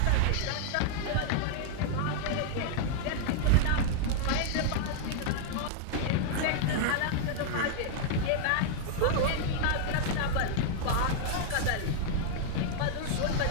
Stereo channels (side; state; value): both; different; correlation -0.01